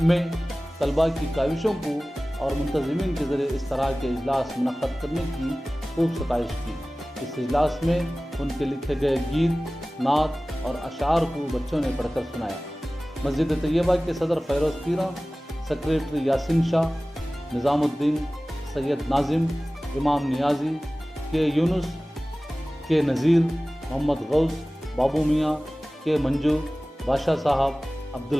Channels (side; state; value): both; normal; correlation 0.97